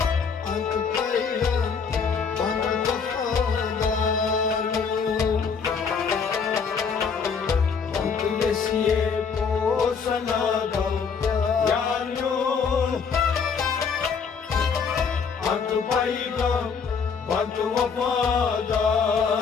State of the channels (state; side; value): quieter; right; 5.9 dB